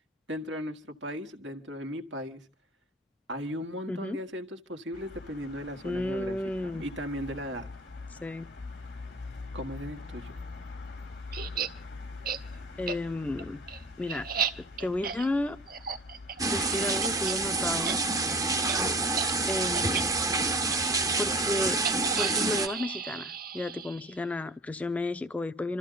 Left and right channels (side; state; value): both; normal; correlation 0.41